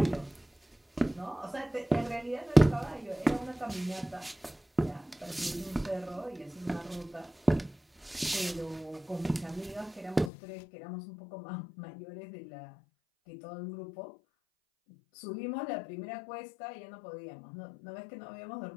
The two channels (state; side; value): drops out; right; at 10.3 s